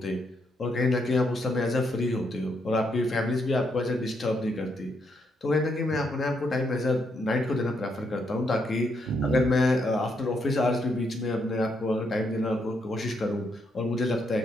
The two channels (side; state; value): both; normal; correlation 0.77